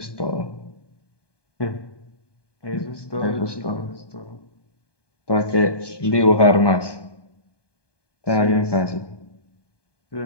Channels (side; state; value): right; late; 1.2 ms